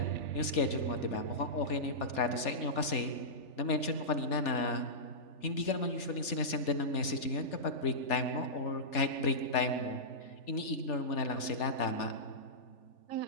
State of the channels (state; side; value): late; right; 3.4 ms